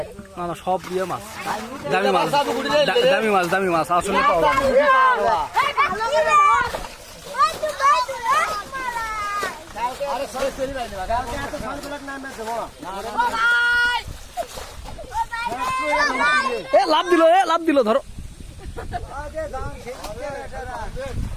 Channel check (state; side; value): identical; both; correlation 1.00